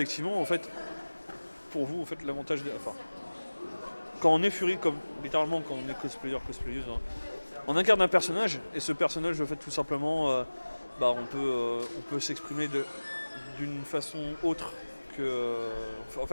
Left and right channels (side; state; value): both; inverted; correlation -1.00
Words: en fait, pour vous, en fait, l'avantage enfin, quand on est furie, comme littéralement quand on est cosplayeuse, on incarne un personnage, et ce personnage, en fait, tout simplement, on peut s'exprimer d'une façon autre que... en